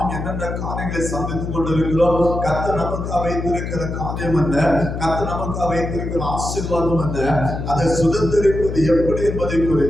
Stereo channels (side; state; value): left; noise; hum, 5 dB below the sound